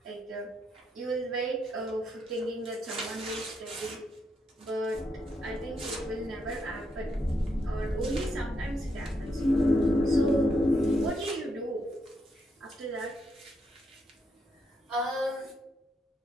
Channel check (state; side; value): normal; both; correlation 0.79